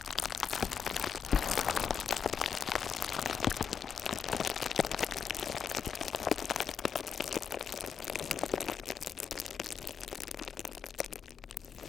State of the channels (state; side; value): quieter; right; 7.0 dB